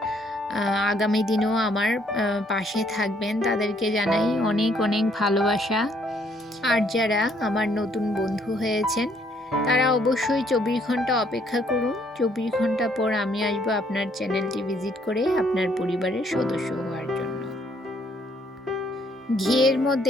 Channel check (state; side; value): normal; both; correlation 0.67